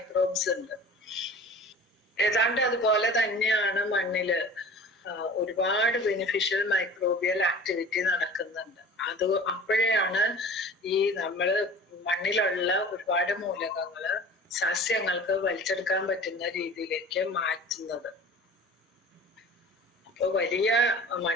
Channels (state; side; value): normal; both; correlation 0.41